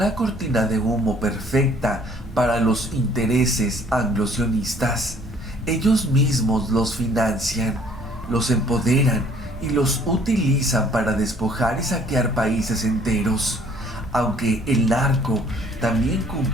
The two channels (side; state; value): both; normal; correlation 0.58